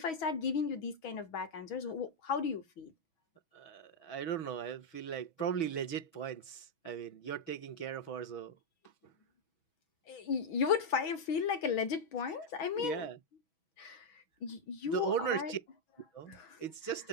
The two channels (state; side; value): late; right; 6.1 ms